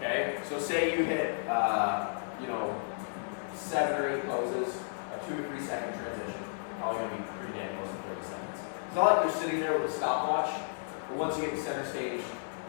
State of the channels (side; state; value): right; silent; 56 dB below the other